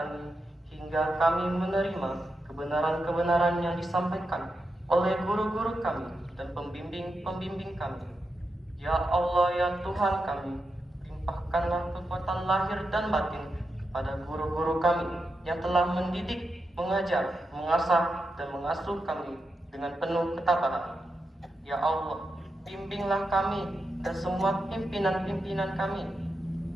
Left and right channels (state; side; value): normal; both; correlation 0.88